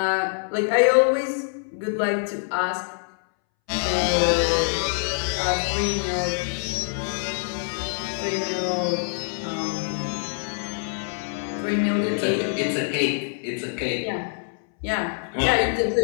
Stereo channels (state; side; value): silent; right; 62 dB below the other